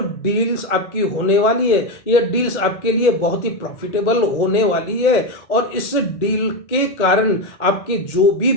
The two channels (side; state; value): right; late; 2.0 ms